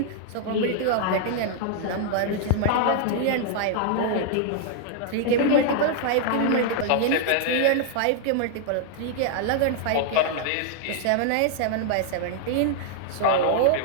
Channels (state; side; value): different; both; correlation -0.01